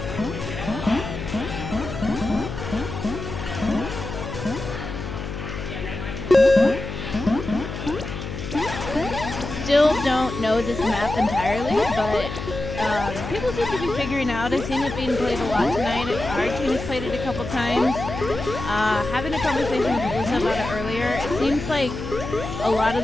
Still don't know this map entirely, but people seem to be figuring out. I've seen it being played a lot tonight. Our team has played it a couple times. Having a conversation with Alyssa about it earlier, it seems like a lot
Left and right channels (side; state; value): left; noise; hum, 7 dB below the sound